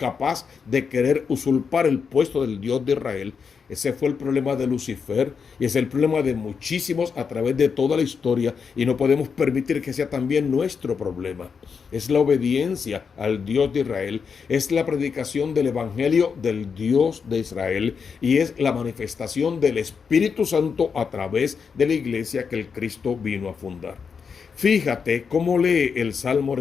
de querer usurpar el puesto del Dios de Israel. Ese fue el problema de Lucifer y es el problema de muchísimos a través de toda la historia, y no podemos permitir que sea también nuestro problema. Es la obediencia al Dios de Israel, es la predicación del Evangelio del Dios de Israel y es la manifestación del Espíritu Santo a través de la iglesia que el Cristo vino a fundar. Fíjate cómo lee el Salmo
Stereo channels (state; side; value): quieter; right; 6.0 dB